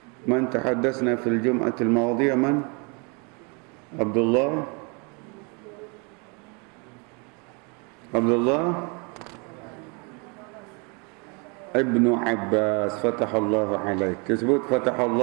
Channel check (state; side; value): quieter; left; 32.9 dB